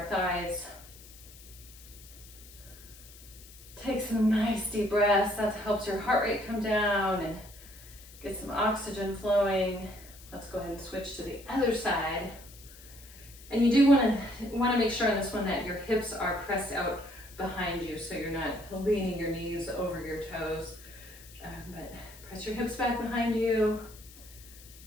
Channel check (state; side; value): noise; left; hiss, 20 dB below the sound